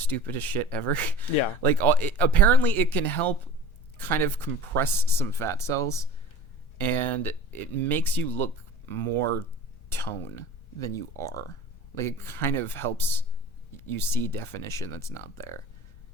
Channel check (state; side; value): late; right; 1.4 ms